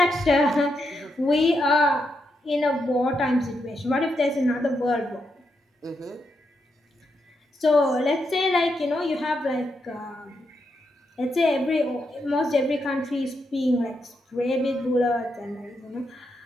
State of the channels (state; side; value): normal; both; correlation 0.82